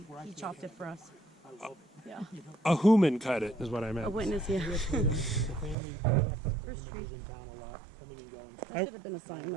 chopped it for us. I love it. Yeah. A human cut it, is what I A meant. witness, yeah. The family, they have First family members in town a lot, coming and going. That should have been a sign,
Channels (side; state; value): left; drops out; at 5.8 s